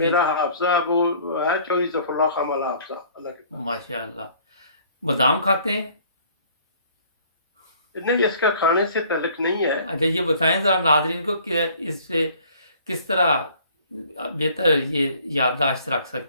حافظہ وہ ہے چودھری ظفر اللہ خان والا حافظہ، اللہ کے فضل ماشاء اللہ۔ بادام کھاتے ہیں؟ سے۔ نہیں، اس کا کھانے سے تعلق نہیں ہے۔ اچھا یہ بتائیں ذرا ناظرین کو کہ اس سے کس طرح بہتر یہ یادداشت رکھ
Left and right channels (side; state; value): both; inverted; correlation -0.55